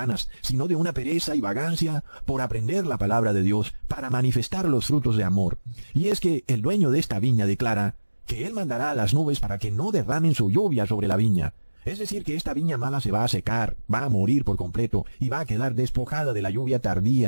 sino de una pereza y vagancia por aprender la palabra de Dios para manifestar los frutos de amor. Y es que el dueño de esta viña declara que él mandará a las nubes para que no derramen su lluvia sobre la viña. Es decir, que esta viña mala se va a secar, va a morir por completo y va a quedar despojada de la lluvia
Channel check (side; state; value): both; inverted; correlation -1.00